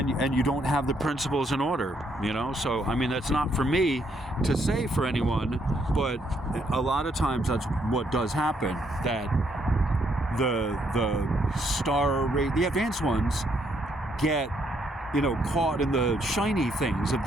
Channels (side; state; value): both; normal; correlation 0.72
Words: you don't have the principles in order, you know? So, I mean, that's not for me to say for anyone, but a lot of times that's what does happen, that the advanced ones get, you know, caught in the shiny things of